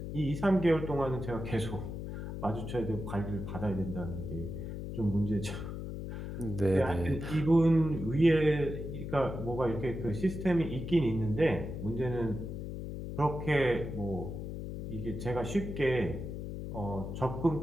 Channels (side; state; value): left; noise; hum, 6 dB below the sound